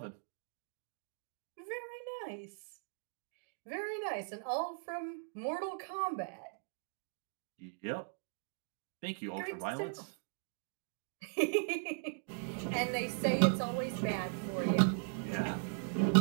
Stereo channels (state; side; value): silent; left; digital silence